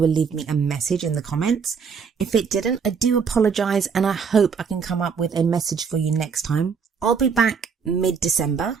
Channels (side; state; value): left; quieter; 6.1 dB